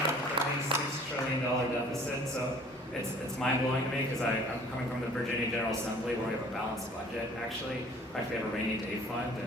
a $36 trillion deficit, so it's mind-blowing to me because I'm coming from the Virginia General Assembly where we have a balanced budget, actually. In fact, we have a rainy day fund,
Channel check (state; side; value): normal; both; correlation 0.52